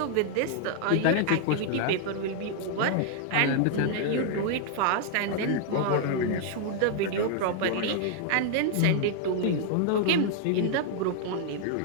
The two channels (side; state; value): both; different; correlation 0.00